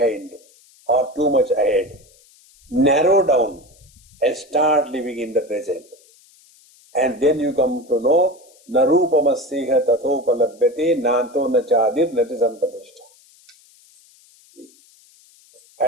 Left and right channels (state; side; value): noise; left; hiss, 29 dB below the sound